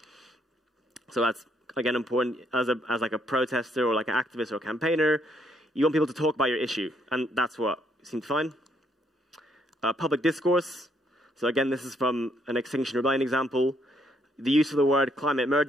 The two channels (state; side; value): normal; both; correlation 0.71